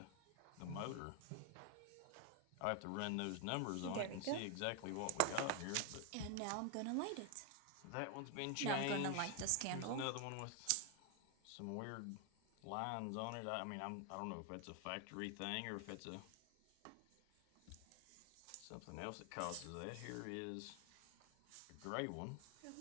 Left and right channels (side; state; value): both; different; correlation 0.01